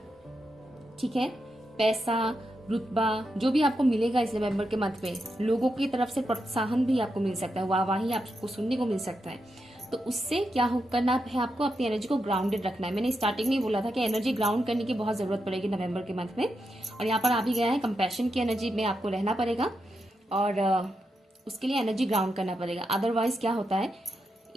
ठीक है। पैसा, रुतबा जो भी आपको मिलेगा इस नवंबर के मंथ में, लोगों की तरफ से प्रोत्साहन भी आपको मिल सकता है, वाहवाही आपको सुनने को मिल सकता है। तो उससे क्या करना है, आपको अपनी एनर्जी को ग्राउंडेड रखना है। मैंने स्टार्टिंग में ही बोला था कि एनर्जी ग्राउंड करने की बहुत जरूरत पड़ेगी नवंबर के मंथ में, और यहाँ पर आ भी गया है कंपैशन की एनर्जी में आपको रहना पड़ेगा, और उसके लिए एनर्जी ग्राउंड करना पड़ेगा। अदरवाइज क्या होता है,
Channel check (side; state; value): both; normal; correlation 0.85